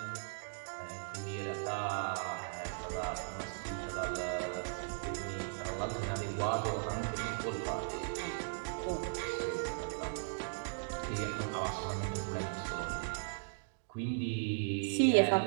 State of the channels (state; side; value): silent; left; digital silence